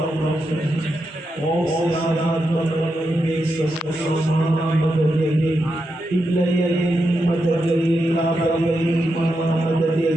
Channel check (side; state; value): both; normal; correlation 0.86